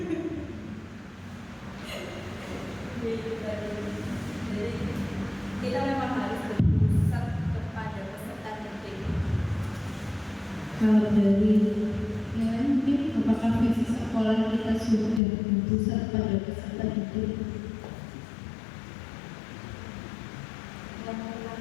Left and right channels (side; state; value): right; drops out; at 15.2 s